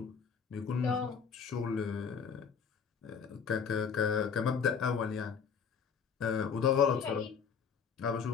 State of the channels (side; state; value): right; quieter; 6.5 dB